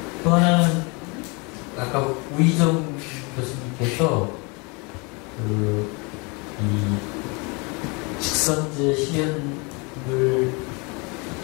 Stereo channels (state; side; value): quieter; right; 30.2 dB